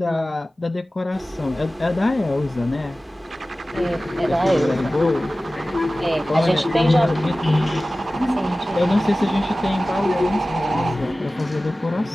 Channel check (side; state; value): both; normal; correlation 0.96